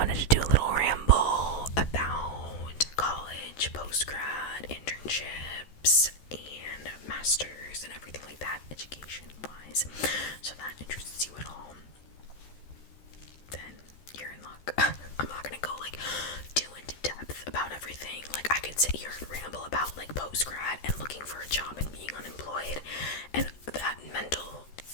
to do a little ramble about college, post-grad, internships, and masters, and everything like that, education-wise. So if that interests you at all, then you're in luck. I'm not gonna go too into depth about everything. I could sit here and ramble about post-grad and looking for a job and being unemployed and that mental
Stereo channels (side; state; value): right; late; 14 ms